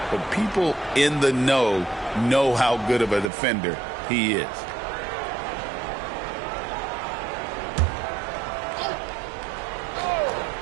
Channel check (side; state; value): left; drops out; at 3.3 s